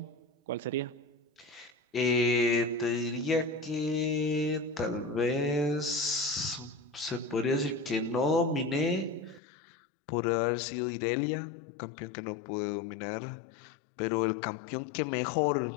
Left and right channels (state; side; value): drops out; right; at 9.4 s